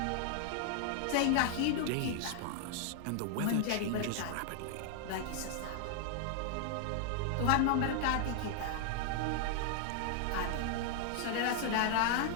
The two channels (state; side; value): different; both; correlation 0.00